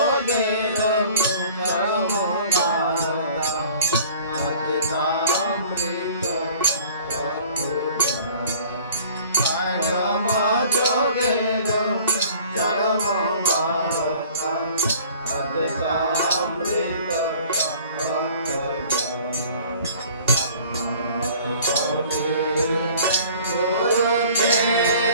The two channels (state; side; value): inverted; both; correlation -0.49